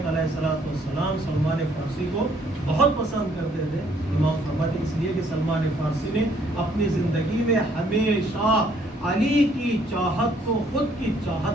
علیہ الصلوۃ والسلام سلمان فارسی کو بہت پسند کرتے تھے۔ امام فرماتے اس لیے کہ سلمان فارسی نے اپنی زندگی میں ہمیشہ علی کی چاہت کو خود کی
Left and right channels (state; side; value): normal; both; correlation 0.65